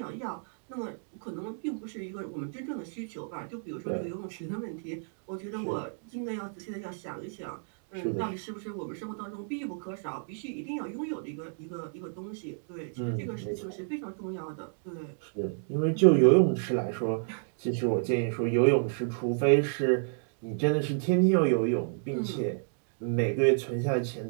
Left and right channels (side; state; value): left; silent; digital silence